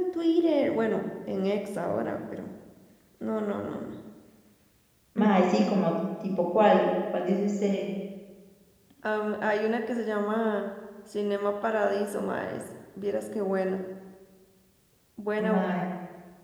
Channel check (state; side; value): identical; both; correlation 1.00